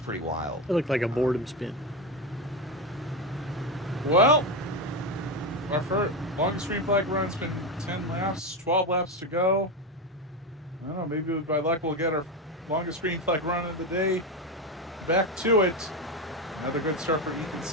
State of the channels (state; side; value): normal; both; correlation 0.14